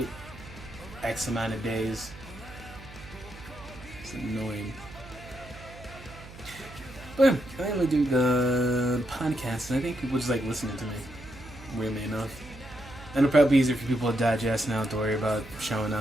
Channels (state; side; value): noise; right; hum, 17 dB below the sound